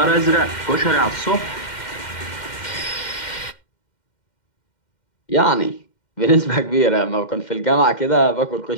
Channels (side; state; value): right; late; 2.1 ms